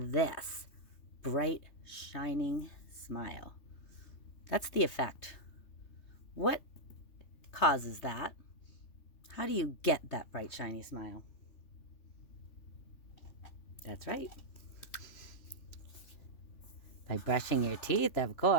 bright, shining smile. That's the effect. What causes that? How do you get that bright, shiny smile? That's right. By brushing your teeth, of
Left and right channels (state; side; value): late; right; 3.2 ms